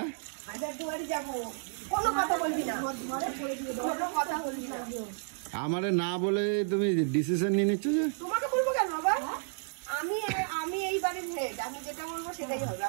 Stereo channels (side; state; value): left; silent; digital silence